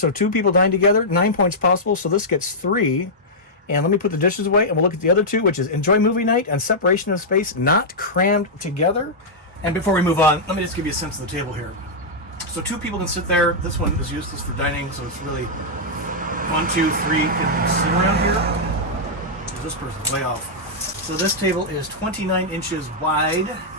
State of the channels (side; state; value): both; normal; correlation -0.08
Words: 2 people dine together, 9 points possible. So this gets 3. And let me put the dishes away and we'll look at the other 2, which is enjoy movie night and separation of space, not crammed together. And before we move on, let me just give you a sense of the table here. So 2 people can sit there. This one is useless for dining, so it's really 1, 2, 3 can sit around here. This person's way off. So this table is 29 inches wide.